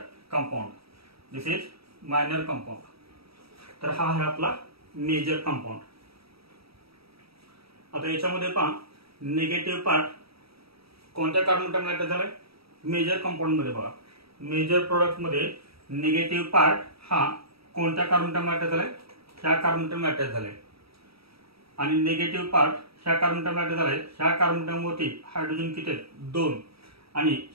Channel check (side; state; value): left; late; 0.77 ms